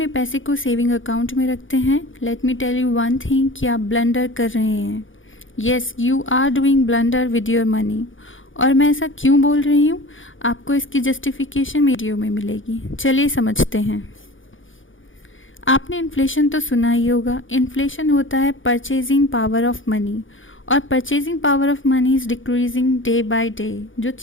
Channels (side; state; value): right; late; 0.57 ms